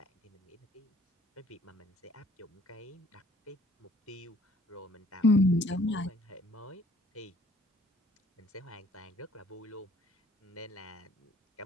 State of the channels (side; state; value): both; normal; correlation 0.58